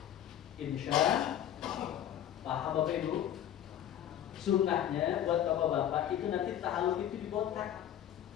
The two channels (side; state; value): right; quieter; 10.8 dB